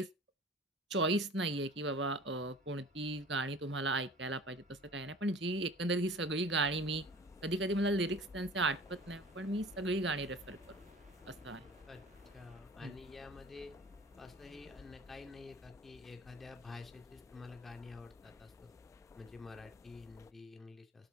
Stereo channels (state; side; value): normal; both; correlation 0.43